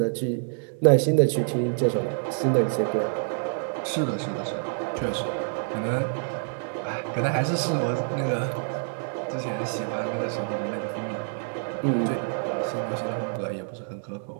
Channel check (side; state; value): left; silent; digital silence